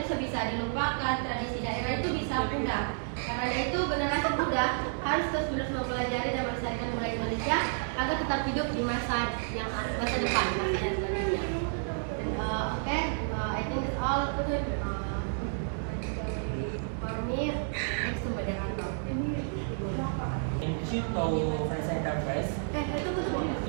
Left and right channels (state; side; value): silent; left; 57 dB below the other